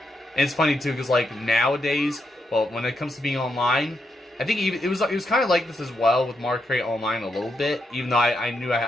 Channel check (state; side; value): normal; both; correlation 0.82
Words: it's funny too, because like nowadays, well, when it comes to being online, I think it was kind of like this as well with Mario Kart Online a little bit, even though I knew